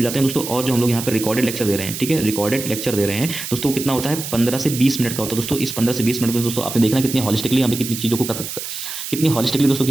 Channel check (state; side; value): noise; right; hiss, 7 dB below the sound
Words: जाते हैं दोस्तों। और जो हम लोग यहाँ पे रिकॉर्डेड लेक्चर दे रहे हैं, ठीक है, रिकॉर्डेड लेक्चर दे रहे हैं दोस्तों, कितना होता है, 15 से 20 मिनट का होता है दोस्तों। इस 15 से 20 मिनट में दोस्तों आपने देखना कितनी हॉलिस्टिकली यहाँ पे कितनी चीज़ों को कितनी हॉलिस्टिकली दोस्तों